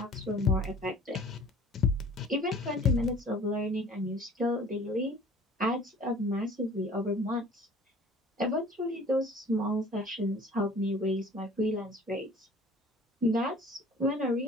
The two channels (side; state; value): both; normal; correlation 0.48